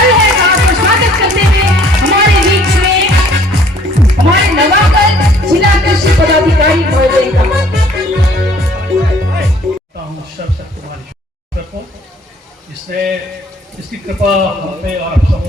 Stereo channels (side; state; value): both; normal; correlation 0.57